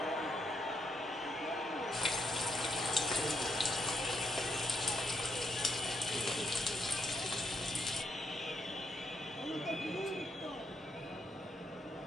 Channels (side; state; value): both; normal; correlation 0.78